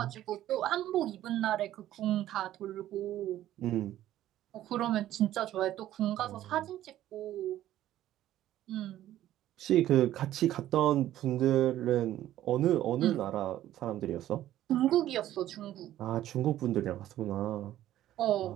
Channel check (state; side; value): quieter; left; 13.2 dB